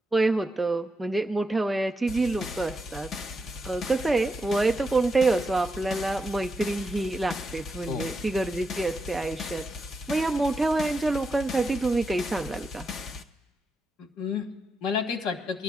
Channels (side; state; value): both; normal; correlation 0.85